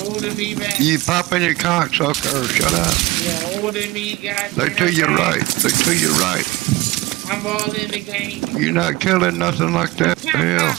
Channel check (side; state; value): left; quieter; 20.5 dB